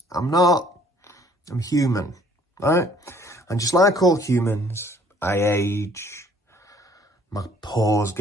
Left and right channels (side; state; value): both; normal; correlation 0.59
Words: I'm not. I'm human, right? And just like all humans, I age. My pores